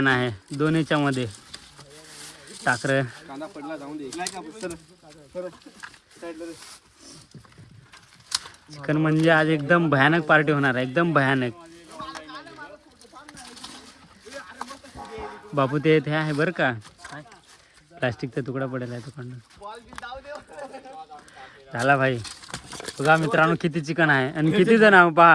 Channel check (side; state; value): both; identical; correlation 1.00